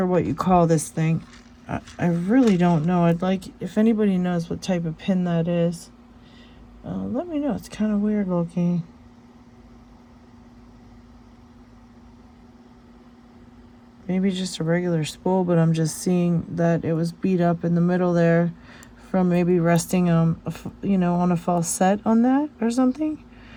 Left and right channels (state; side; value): identical; both; correlation 1.00